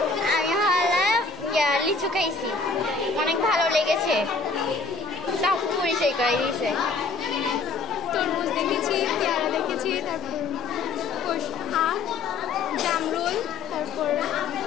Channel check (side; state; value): right; quieter; 4.5 dB